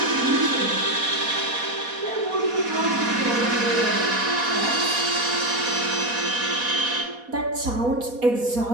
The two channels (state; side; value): late; left; 4.2 ms